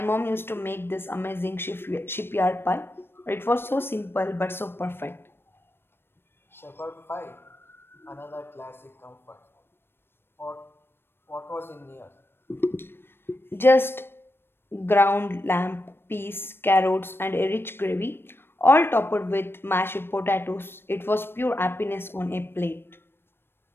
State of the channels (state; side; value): late; right; 0.11 ms